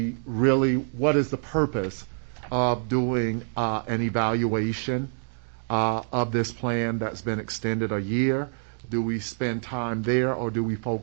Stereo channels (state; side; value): silent; left; 61 dB below the other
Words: the purpose of doing an evaluation of this plan that's been extended a year? Do we spend time there, or do we